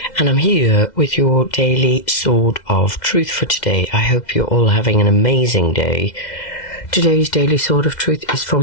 and I'm here with your daily sword of truth for today. I hope you're all having an amazing day. Today's daily sword of truth is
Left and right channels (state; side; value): late; right; 2.1 ms